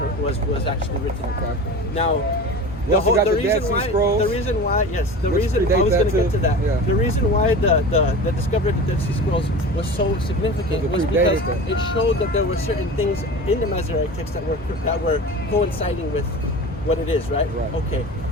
was actually written. Okay. Now, The reason why the discovery of the Dead Sea Scrolls was so significant was because it showed that there were certain things in the Masoretic text that were coinciding with what it is, right? Okay.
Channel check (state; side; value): normal; both; correlation 0.33